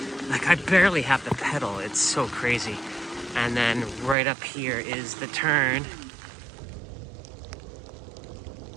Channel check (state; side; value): drops out; left; at 4.2 s